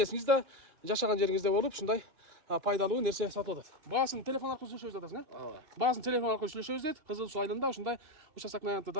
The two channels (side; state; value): left; late; 2.6 ms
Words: жашаган жериңизде болуп, ушундай пайдалуу нерсе сатып атат. Баасын телефон аркылуу сүйлөшөбүз атасың, Баасын телефон аркылуу сүйлөшөбүз дейт. Кызыл Суу айылында ушундай участоктун аянты